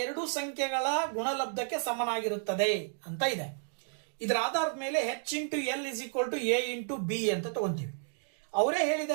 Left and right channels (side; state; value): left; silent; digital silence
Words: ಸಂಖ್ಯೆಗಳ ಗುಣಲಬ್ಧಕ್ಕೆ ಸಮನಾಗಿರುತ್ತದೆ ಅಂತ ಇದೆ. ಇದರ ಆಧಾರದ ಮೇಲೆ H into L is equal to A into B ಅಂತ ತಗೊಂತೀವಿ. ಅವರೇ